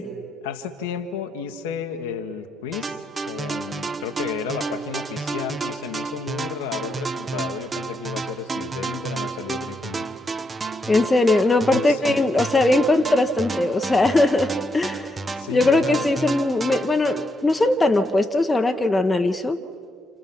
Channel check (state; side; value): normal; both; correlation 0.81